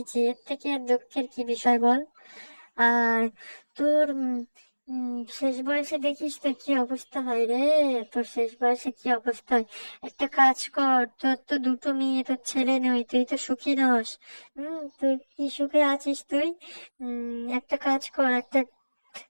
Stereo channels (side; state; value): both; inverted; correlation -1.00